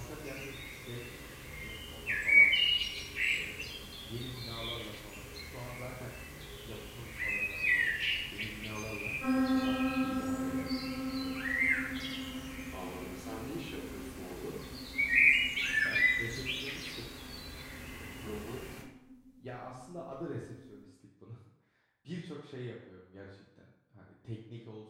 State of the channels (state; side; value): identical; both; correlation 1.00